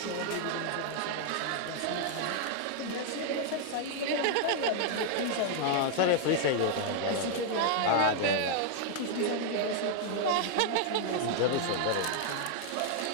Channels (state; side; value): different; both; correlation 0.00